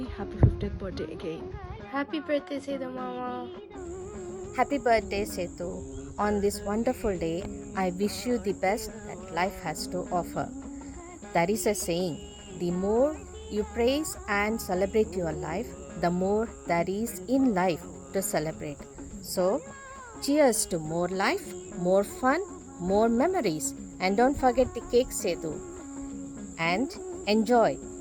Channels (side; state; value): both; identical; correlation 1.00